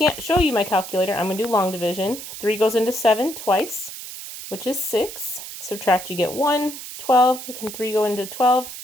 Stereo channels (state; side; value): noise; right; hiss, 11 dB below the sound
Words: show you my calculator, I'm going to do long division. 3 goes into 7 twice, which is 6. Subtract, you get 1. 12. Can 3 go into 12?